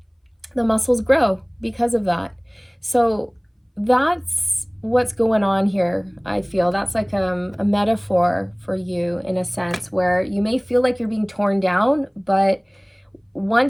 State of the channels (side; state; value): both; identical; correlation 1.00